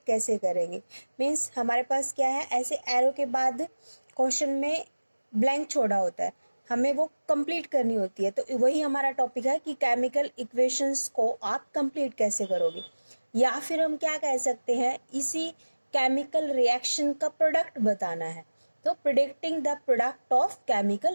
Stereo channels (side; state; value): both; inverted; correlation -1.00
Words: कैसे करेंगे। मीन्स हमारे पास क्या है, ऐसे एरो के बाद क्वेश्चन में ब्लैंक छोड़ा होता है, हमें वो कंप्लीट करनी होती है। तो वही हमारा टॉपिक है कि केमिकल इक्वेशंस को आप कंप्लीट कैसे करोगे, या फिर हम क्या कह सकते हैं, इसी केमिकल रिएक्शन का प्रोडक्ट बताना है। तो predicting the product of